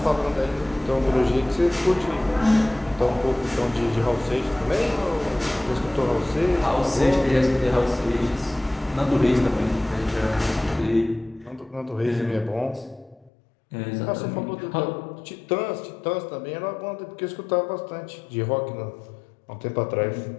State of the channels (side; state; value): right; drops out; at 13.3 s